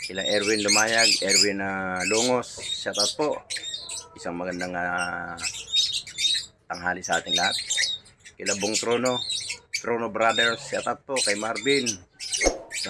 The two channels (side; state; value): both; identical; correlation 1.00